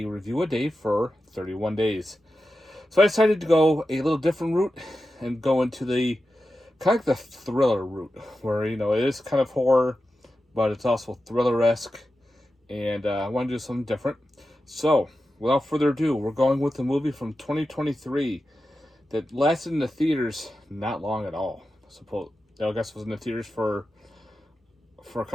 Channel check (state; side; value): normal; both; correlation 0.92